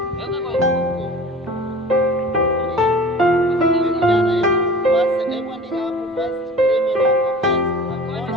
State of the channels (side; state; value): both; normal; correlation 0.41